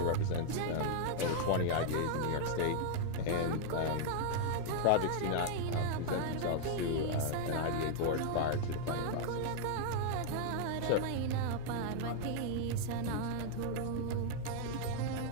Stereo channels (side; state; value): both; different; correlation 0.00